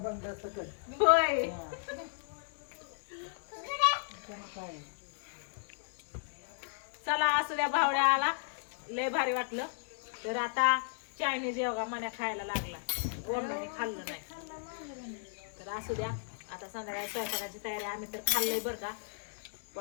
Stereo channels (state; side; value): silent; right; digital silence